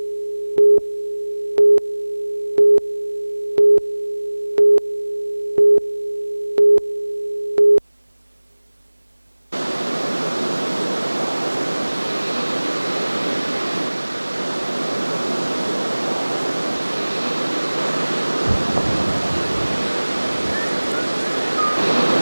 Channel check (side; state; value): both; inverted; correlation -1.00